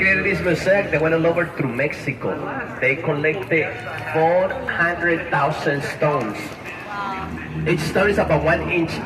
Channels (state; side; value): identical; both; correlation 1.00